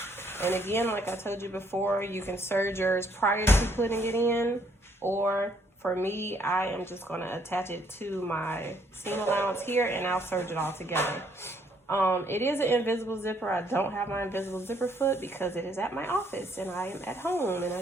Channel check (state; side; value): normal; both; correlation 0.68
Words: And again, like I told you before, you can serge yours prior to putting it in, or for me, I am just gonna attach it to my seam allowance here, and I'll serge it all together. It is an invisible zipper. I don't have my invisible zipper foot because it is at my office and I am at home and I